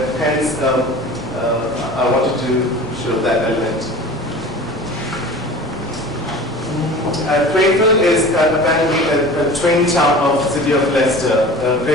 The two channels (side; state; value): both; normal; correlation 0.39